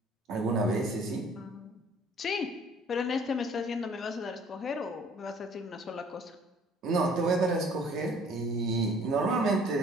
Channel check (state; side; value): normal; both; correlation 0.55